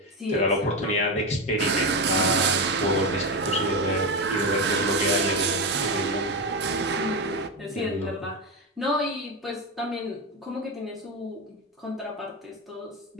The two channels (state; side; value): normal; both; correlation 0.14